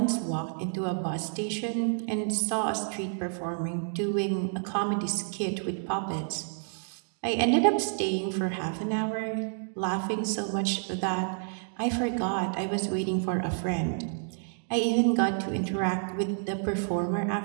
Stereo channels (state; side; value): silent; left; 58 dB below the other